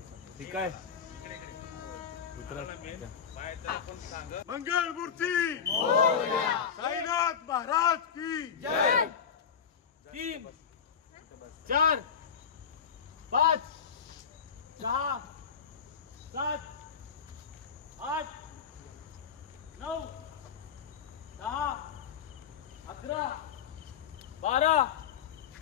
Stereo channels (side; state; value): right; quieter; 7.2 dB